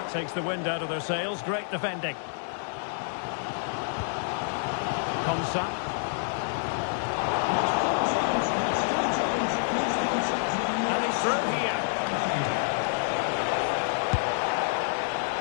takes the wind out of their sails. Great defending. Konsa. And he's through here.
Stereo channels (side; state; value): right; silent; 59 dB below the other